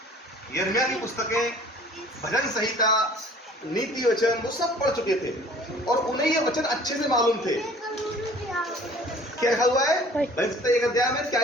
यिर्मयाह की पुस्तकें, भजन संहिता, नीति वचन, वो सब पढ़ चुके थे, और उन्हें ये वचन अच्छे से मालूम थे। क्या लिखा हुआ है एक अध्याय में? क्या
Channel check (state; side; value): normal; both; correlation 0.51